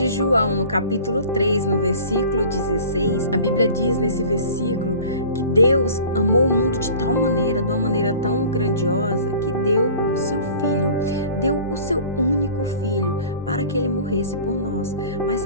João, no capítulo 3, no versículo 16, a Bíblia diz nesse versículo que Deus amou o mundo de tal maneira, de uma maneira tão grandiosa, que deu o seu filho, deu o seu único filho para que ele morresse por nós. Mas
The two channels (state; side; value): inverted; both; correlation -0.44